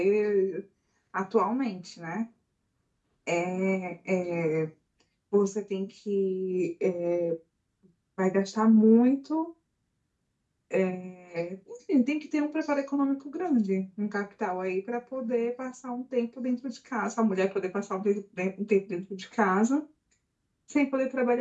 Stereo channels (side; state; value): both; identical; correlation 1.00